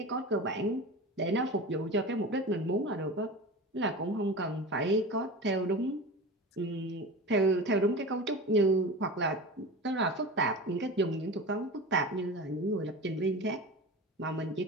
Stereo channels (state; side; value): normal; both; correlation 0.30